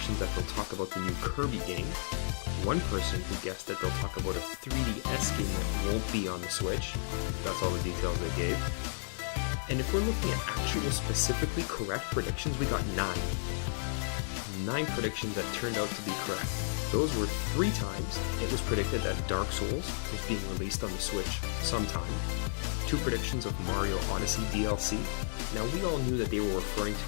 that they'll talk about the new Kirby game, 1 person who guessed that they'll talk about a 3DS game that won't be on the Switch. That's all the details they gave. And if we're looking at actual specifically correct predictions, we got 9. 9 predictions that turned out to be correct. Those were 3 times it was predicted that Dark Souls was being released on the Switch sometime. 2 predictions of Mario Odyssey DLC. Now, we all knew that they were referring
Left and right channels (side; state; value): right; silent; digital silence